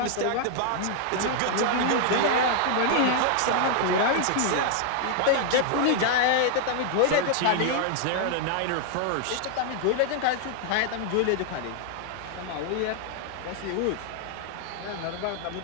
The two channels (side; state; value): both; different; correlation 0.00